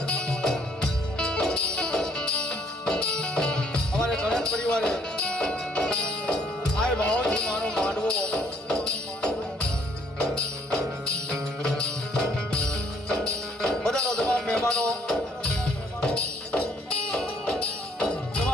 અમારે ગણેશ પરિવારે આ ભાવથી માનો માંડવો બધાનો તમામ મહેમાનો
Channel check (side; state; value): both; normal; correlation 0.65